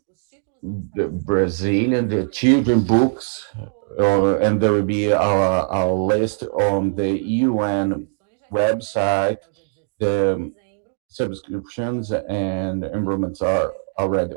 the Brazilian, the children books, and there will be a list on the UN website. The subscriptions and enrollments are already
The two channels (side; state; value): left; silent; digital silence